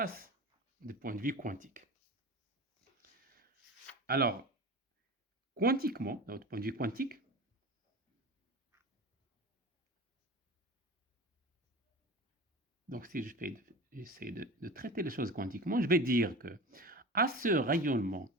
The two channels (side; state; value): both; normal; correlation 0.33